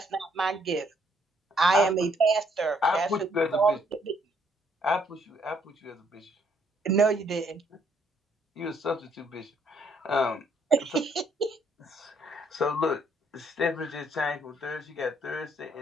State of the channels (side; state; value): both; normal; correlation 0.68